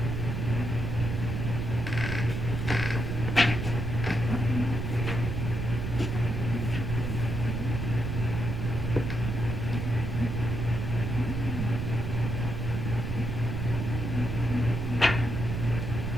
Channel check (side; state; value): right; noise; rumble, 2 dB below the sound